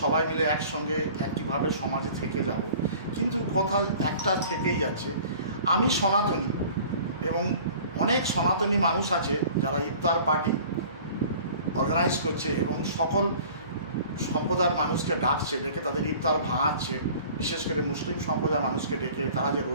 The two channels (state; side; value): inverted; both; correlation -0.47